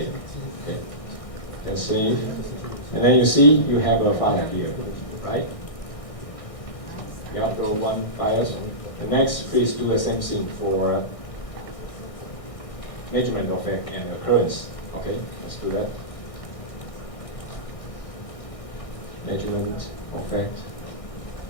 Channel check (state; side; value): late; right; 1.6 ms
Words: Okay, then save, and then you see you have a file here, right? You upload one file. The next, please do the same thing for measurement effect and occurrence. Okay, let's do that. Measurement effect,